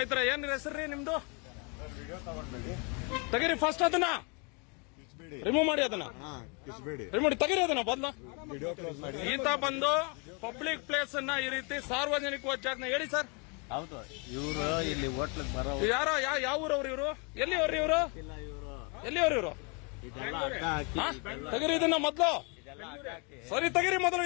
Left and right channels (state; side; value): quieter; right; 33.0 dB